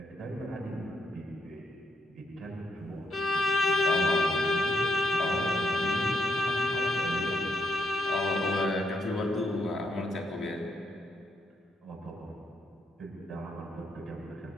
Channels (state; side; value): normal; both; correlation 0.78